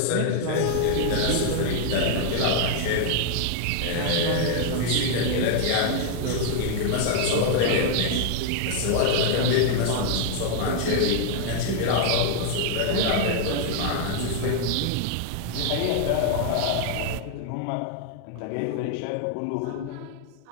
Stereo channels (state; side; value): different; both; correlation 0.00